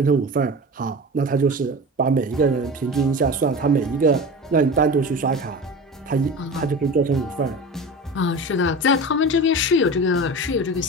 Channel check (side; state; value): both; normal; correlation 0.31